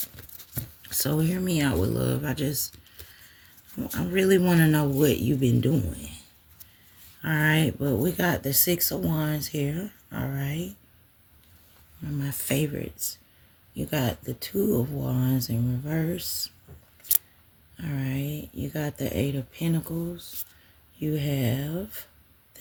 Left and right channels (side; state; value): both; identical; correlation 1.00